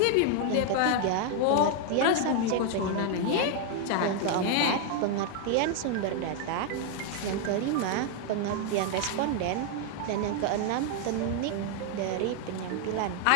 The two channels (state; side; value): different; both; correlation 0.00